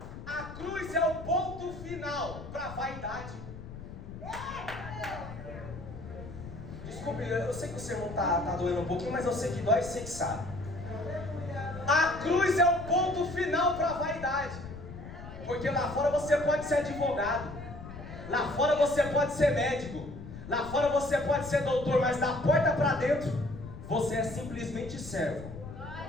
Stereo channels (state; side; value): noise; left; rumble, 12 dB below the sound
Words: A cruz é o ponto final para a vaidade. Desculpe, eu sei que o sermão está doendo um pouquinho, mas eu sei que dói, sei que sabe. A cruz é o ponto final para a vaidade. Porque lá fora você pode ser advogado, lá fora você pode ser médico, lá fora você pode ser doutor, mas da porta para dentro você é simplesmente servo.